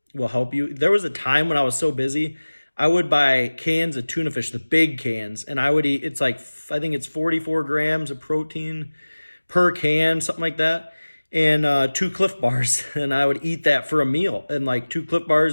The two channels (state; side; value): inverted; both; correlation -1.00